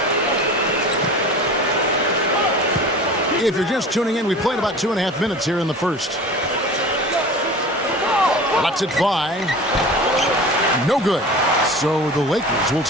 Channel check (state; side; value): normal; both; correlation 0.37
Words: If you're just tuning in, we played about 2.5 minutes here in the first. Lets it fly. No good. So the Lakers will